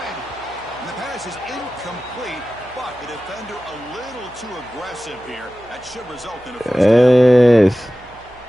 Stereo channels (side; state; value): right; noise; hum, 24 dB below the sound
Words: And the pass is incomplete, but the defender a little too aggressive here. That should result in a first down.